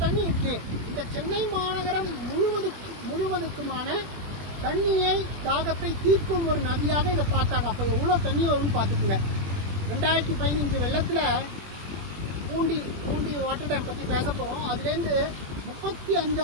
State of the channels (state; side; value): late; left; 21 ms